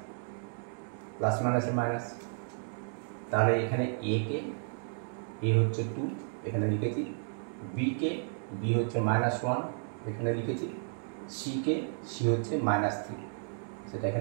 প্লাস মাইনাসে মাইনাস। তাহলে এখানে a কে, a হচ্ছে 2 এখানে লিখেছি, b কে, b হচ্ছে -1 এখানে লিখেছি, c কে, c হচ্ছে -3 সেটা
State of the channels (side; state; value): left; silent; digital silence